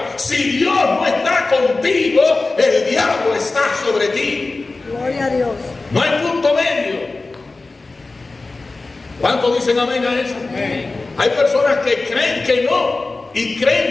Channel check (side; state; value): right; quieter; 3.5 dB